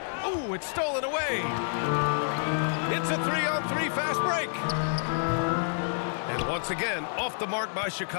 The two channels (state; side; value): silent; right; 59 dB below the other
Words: Ooh, it's stolen away. It's a 3-on-3 fast break. And once again, off the mark by